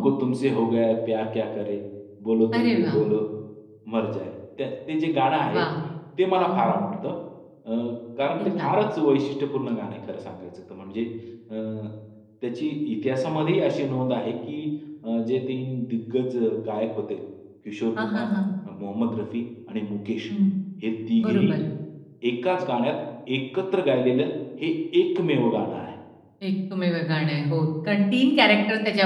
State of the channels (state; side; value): identical; both; correlation 1.00